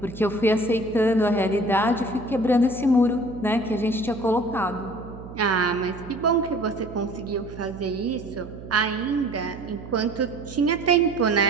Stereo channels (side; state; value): right; noise; hum, 14 dB below the sound